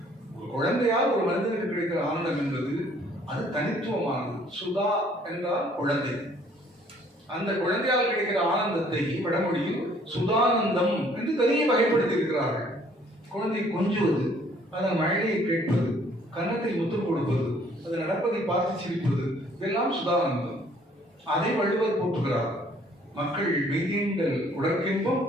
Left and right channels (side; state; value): both; normal; correlation 0.60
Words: ஒரு குழந்தையால் ஒரு மனிதனுக்கு கிடைக்கிற ஆனந்தம் என்பது அது தனித்துவமானது. சுதா என்றால் குழந்தை. அந்த குழந்தையால் கிடைக்கிற ஆனந்தத்தை வடமொழியில் சுதானந்தம் என்று தனியே வகைப்படுத்தி இருக்கிறார்கள். குழந்தை கொஞ்சுவது, அதன் மழையை கேட்பது, கன்னத்தில் முத்தம் கொடுப்பது, அது நடப்பதை பார்த்து சிரிப்பது, இதெல்லாம் சுதானந்தம். அதை வள்ளுவர் போற்றுகிறார். மக்கள் மெய்யீண்டல் உடற்கின்பம்,